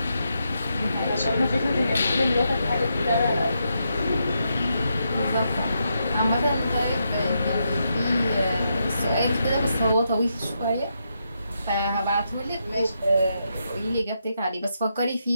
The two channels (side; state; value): both; inverted; correlation -0.82